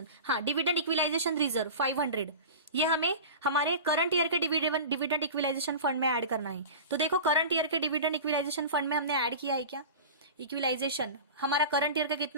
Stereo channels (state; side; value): inverted; both; correlation -0.33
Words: हाँ, डिविडेंड इक्विलाइजेशन रिजर्व 500, ये हमें हमारे करंट ईयर के डिविडेंड इक्विलाइजेशन फंड में ऐड करना है। तो देखो करंट ईयर के डिविडेंड इक्विलाइजेशन फंड में हमने ऐड किया है क्या, इक्विलाइजेशन हमारा करंट ईयर का